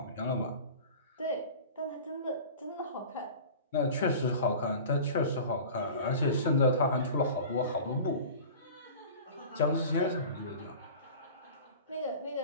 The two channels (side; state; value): both; inverted; correlation -0.38